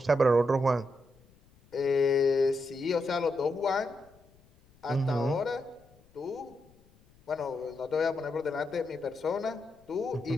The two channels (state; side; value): noise; left; rumble, 30 dB below the sound